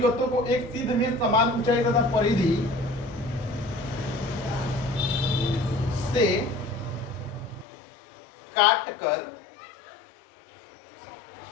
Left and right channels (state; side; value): drops out; right; at 7.7 s